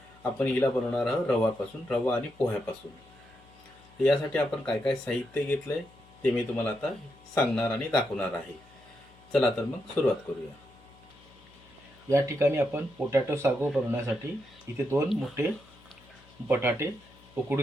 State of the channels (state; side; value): noise; left; hum, 26 dB below the sound